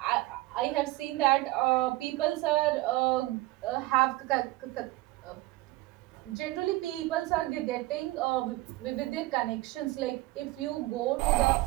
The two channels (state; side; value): quieter; left; 19.0 dB